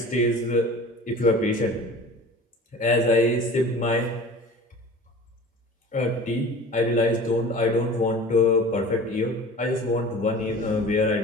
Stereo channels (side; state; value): both; normal; correlation 0.40